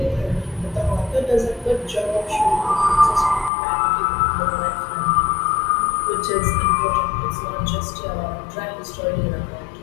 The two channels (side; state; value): right; drops out; at 3.5 s